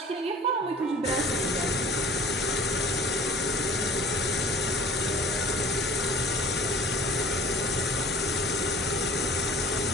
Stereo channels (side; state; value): both; normal; correlation 0.45